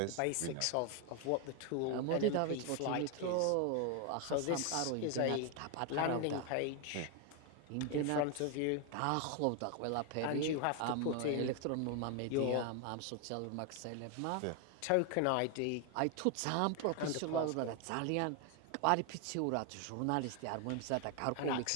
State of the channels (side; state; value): both; different; correlation 0.01